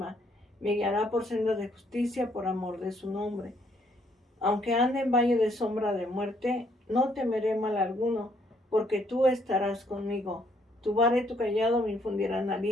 Me guiará por sendas de justicia por amor de su nombre. Aunque ande en valle de sombra de muerte, no temeré mal alguno, porque tú estarás conmigo. Tu vara y tu cayado me infundirán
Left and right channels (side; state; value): both; normal; correlation 0.69